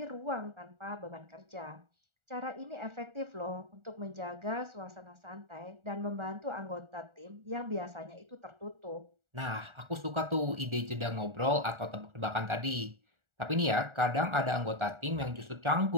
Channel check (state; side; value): late; left; 1.4 ms